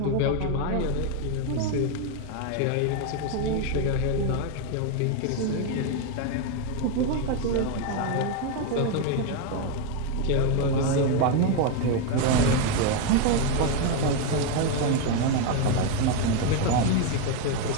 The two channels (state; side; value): different; both; correlation 0.01